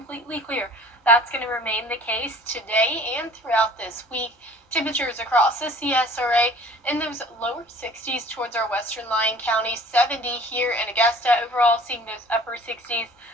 clear. That's going to remain the case today and throughout this week. Temperatures across the CSRA in those lower 60s towards our western Lyon County, 70 here in Augusta. Overall, seeing those upper 60s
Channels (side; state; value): both; normal; correlation 0.49